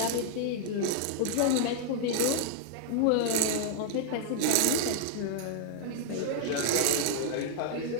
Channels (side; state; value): both; different; correlation 0.00